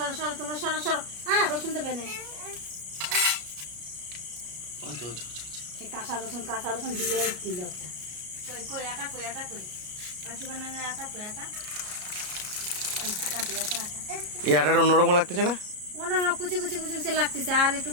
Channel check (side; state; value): left; late; 33 ms